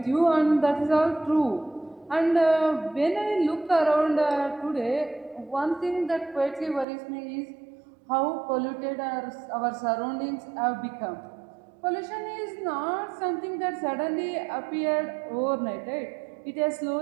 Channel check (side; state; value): left; drops out; at 6.9 s